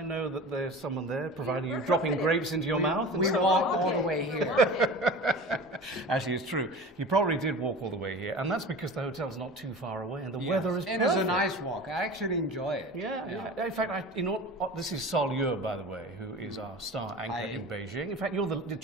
know that there's someone there providing you dropping grapes into your mouth. And We so walked on. all the way here. Actually, it's true. You probably did walk all the way here, and that's because the hotel's not too far away, and the Yes. weather is And perfect. it's a nice walk. I actually enjoy it. Yeah. In fact, this is Sol Yue, by the way, who is our star anchor in Beijing. In fact, you're the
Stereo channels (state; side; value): normal; both; correlation 0.36